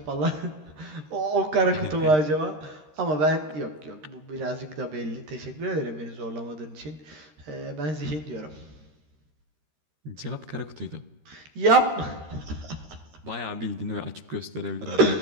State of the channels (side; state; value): left; late; 13 ms